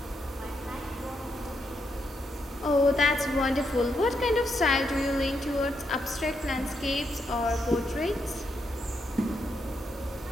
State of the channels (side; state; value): both; normal; correlation 0.80